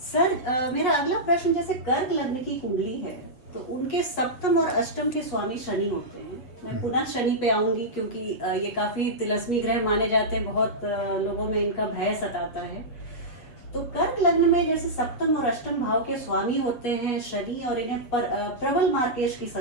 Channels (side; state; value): right; late; 7.9 ms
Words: Sir, मेरा अगला प्रश्न, जैसे कर्क लग्न की कुंडली है तो उनके सप्तम और अष्टम के स्वामी शनि होते हैं। मैं पुनः शनि पे आऊंगी क्योंकि ये काफ़ी तिलस्मी ग्रह माने जाते हैं, बहुत लोगों में इनका भय सताता है। तो कर्क लग्न में जैसे सप्तम और अष्टम भाव के स्वामी होते हैं शनि, और इन्हें प्रबल मार्केश की